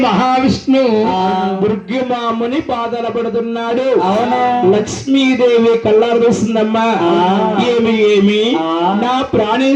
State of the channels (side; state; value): both; identical; correlation 1.00